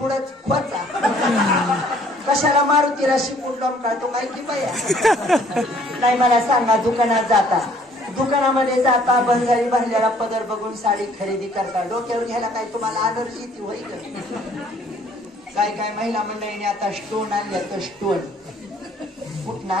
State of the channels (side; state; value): both; normal; correlation 0.59